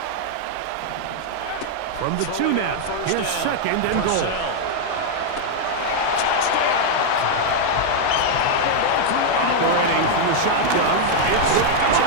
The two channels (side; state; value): both; different; correlation 0.00